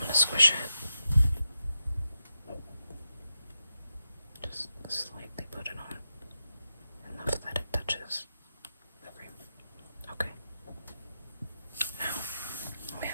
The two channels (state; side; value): inverted; both; correlation -0.87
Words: squish it. Just slightly put it on. Enough that it touches the frame. Okay. Now we